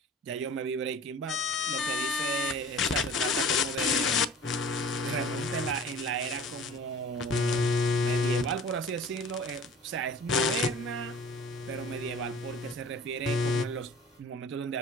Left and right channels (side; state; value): both; normal; correlation 0.43